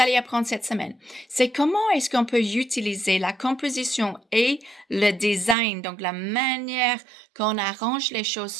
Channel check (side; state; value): left; drops out; at 5.6 s